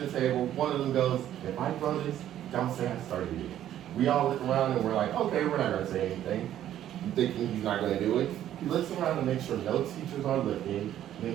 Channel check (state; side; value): quieter; left; 11.7 dB